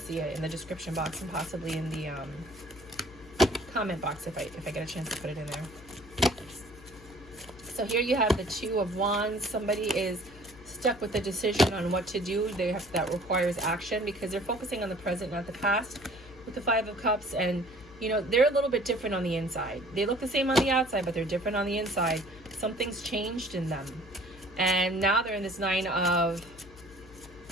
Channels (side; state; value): left; noise; hum, 20 dB below the sound